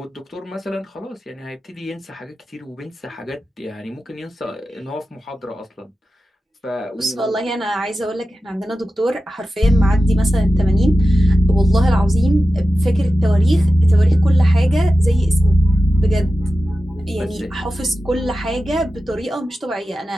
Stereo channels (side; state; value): both; normal; correlation 0.93